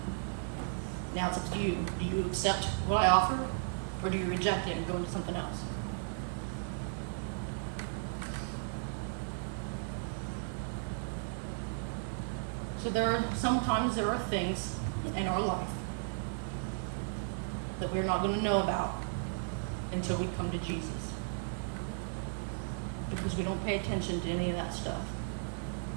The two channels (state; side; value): silent; left; 54 dB below the other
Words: Now it's up to you. Do you accept what I offer, or do you reject it and go into something else? So sometimes there are things in our life that we're not going to know about until we come to Jesus. Because we don't pay attention to any of that stuff.